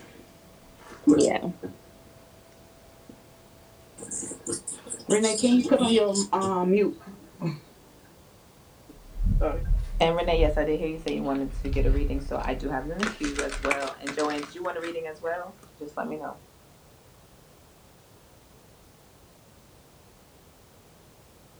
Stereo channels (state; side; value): identical; both; correlation 1.00